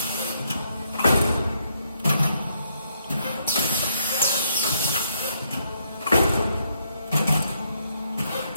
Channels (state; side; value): inverted; both; correlation -0.74